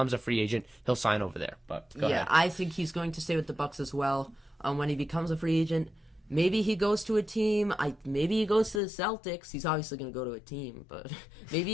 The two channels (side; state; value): right; drops out; at 8.8 s